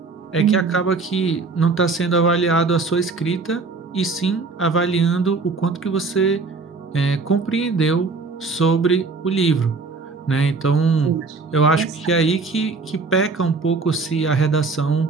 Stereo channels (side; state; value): left; quieter; 4.1 dB